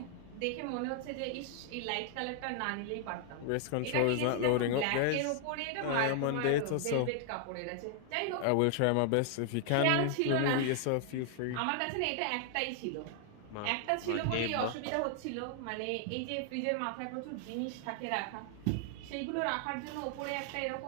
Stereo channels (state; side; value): different; both; correlation 0.00